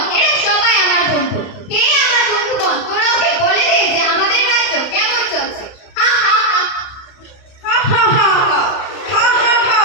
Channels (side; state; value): right; late; 31 ms